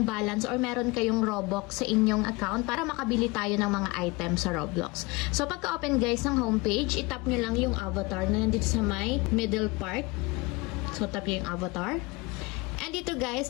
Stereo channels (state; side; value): quieter; right; 24.1 dB